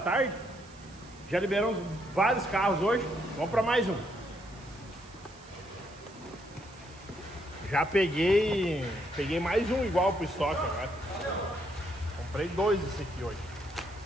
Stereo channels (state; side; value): noise; right; hiss, 24 dB below the sound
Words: Já liberamos vários carros hoje. Vamos para mais um. Já peguei mais um igual pro estoque agora. Comprei 2 desse aqui hoje.